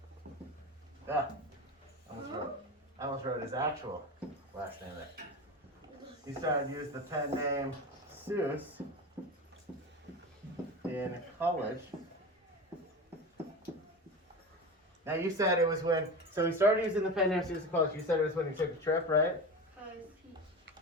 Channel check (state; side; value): normal; both; correlation 0.26